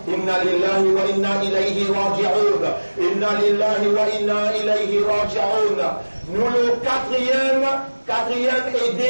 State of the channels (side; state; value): both; inverted; correlation -1.00